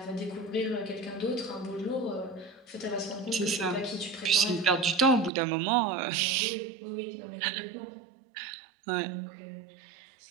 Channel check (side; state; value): left; drops out; at 5.3 s